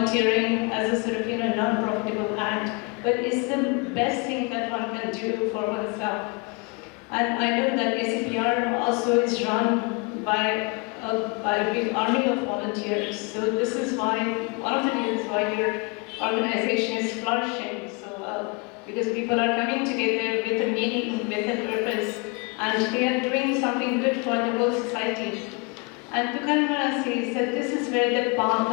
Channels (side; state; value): right; quieter; 30.4 dB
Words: as a sort of, non-profitable act, but it's the best thing that one can do for oneself. And I know that ACPR also is run by a big army of volunteers. So this is why, one of the reasons why your organization is flourishing so well, because people are coming together with a meaning, with a purpose, and they are doing something good for the whole society. And Tukaram Maharaj says that this is where the path